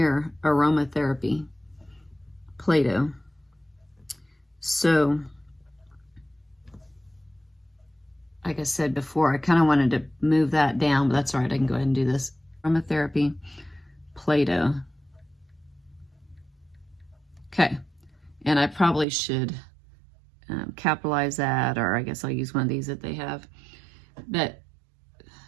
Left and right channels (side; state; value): left; drops out; at 19.1 s